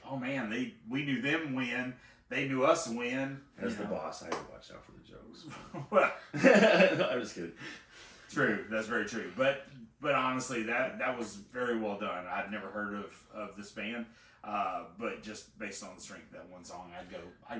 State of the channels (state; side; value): identical; both; correlation 1.00